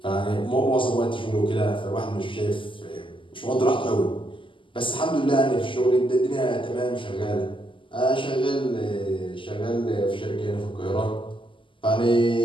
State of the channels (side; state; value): right; late; 0.25 ms